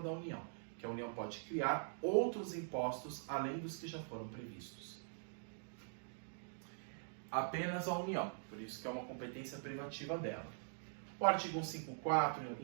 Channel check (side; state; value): left; silent; digital silence